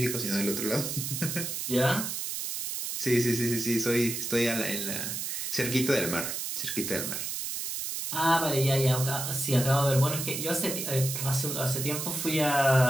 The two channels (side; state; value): right; noise; hiss, 4 dB below the sound